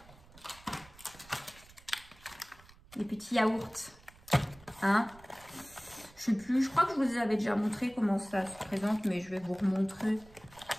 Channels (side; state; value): right; noise; rumble, 23 dB below the sound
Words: Les petits yaourts. Je sais plus, je crois que je vous avais déjà montré comment ça se présente, mais je vais vous remontrer.